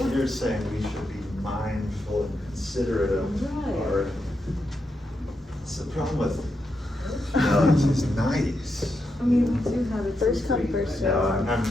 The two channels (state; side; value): normal; both; correlation 0.84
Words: You're saying we should be mindful and considerate of Right. our. It's the problem with. No, it's nice. I mean, we do have it First for come, free, first but- served. No, I'm